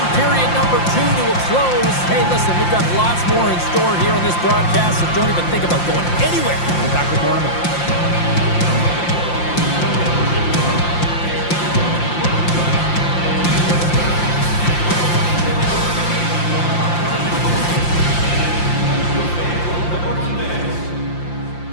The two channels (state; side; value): late; right; 5.7 ms